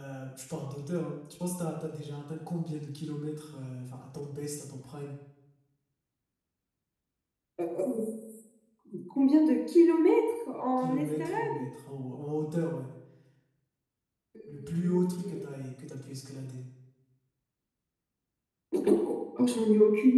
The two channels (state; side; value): identical; both; correlation 1.00